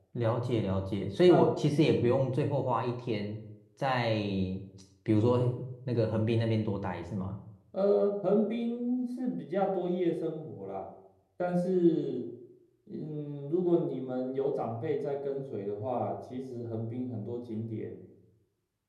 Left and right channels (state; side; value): identical; both; correlation 1.00